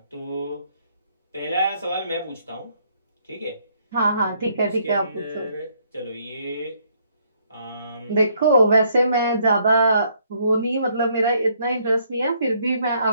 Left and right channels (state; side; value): inverted; both; correlation -0.69